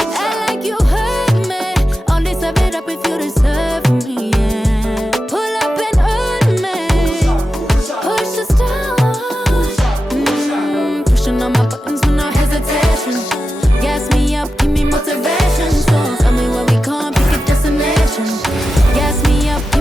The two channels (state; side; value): normal; both; correlation 0.91